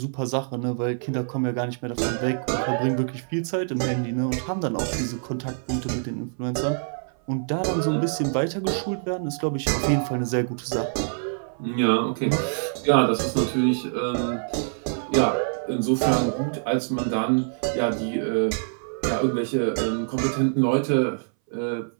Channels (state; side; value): silent; left; 60 dB below the other